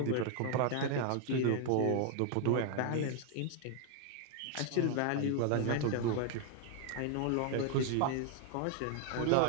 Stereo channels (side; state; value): both; different; correlation 0.00